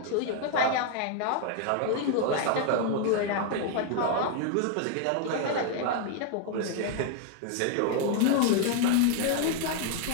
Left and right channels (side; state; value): both; different; correlation 0.00